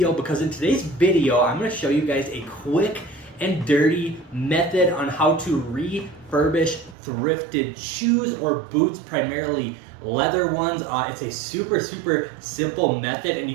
because in today's video I'm going to show you guys a quick and dirty method on how to refurbish thrifted shoes or boots, primarily leather ones. It's a super simple method, and you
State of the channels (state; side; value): drops out; left; at 7.0 s